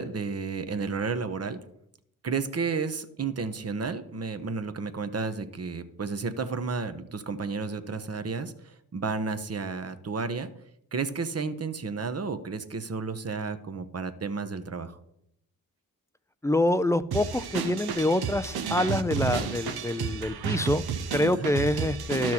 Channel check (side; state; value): both; normal; correlation 0.54